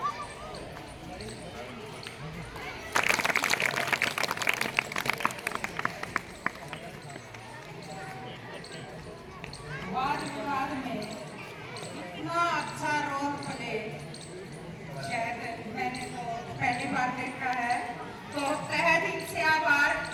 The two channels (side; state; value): both; identical; correlation 1.00